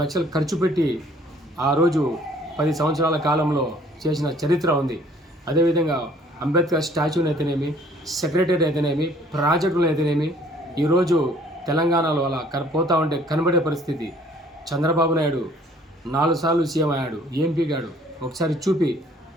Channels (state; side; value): normal; both; correlation 0.57